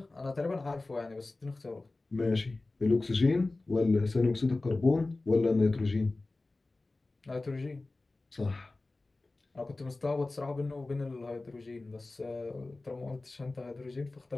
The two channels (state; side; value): quieter; right; 3.2 dB